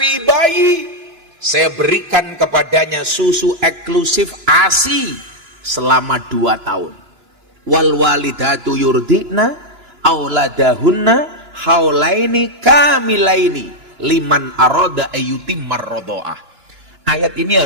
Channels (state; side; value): late; left; 2.9 ms